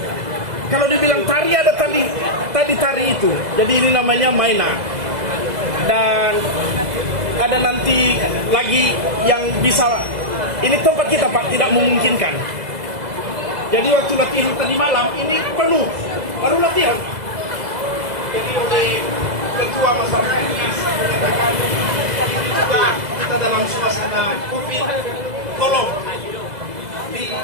Kalau dibilang tari, ada tadi tari itu. Jadi ini namanya mainan. Dan ada nanti lagi yang bisa, ini tempat kita, Pak, tidak memungkinkan. Jadi waktu latihan tadi malam ini penuh, baru latihan. Jadi oleh ketua masyarakat Nias menyatakan ini juga kita dalam suasana COVID, tolong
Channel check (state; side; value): late; left; 2.0 ms